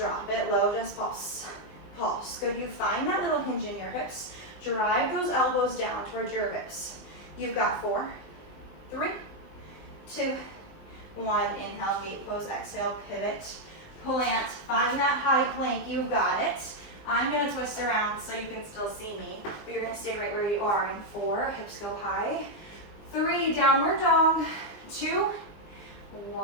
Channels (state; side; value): late; right; 20 ms